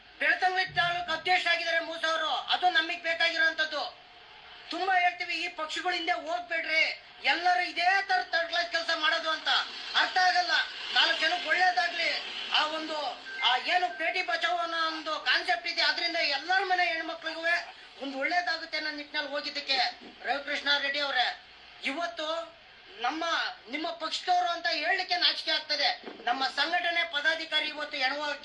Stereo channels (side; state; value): both; identical; correlation 1.00